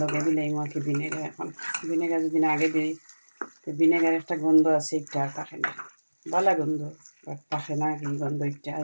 লগে দিলাই মাকে ভিনেগার। এখন ভিনেগার যদি আগে দিই তো ভিনেগার একটা গন্ধ আছে, একটা আর থাকে না, ভালো গন্ধ বাট থাকে না কি গন্ধ। একটা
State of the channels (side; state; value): both; inverted; correlation -1.00